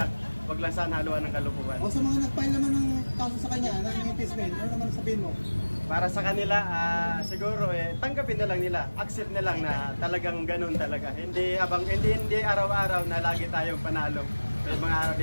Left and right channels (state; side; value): inverted; both; correlation -1.00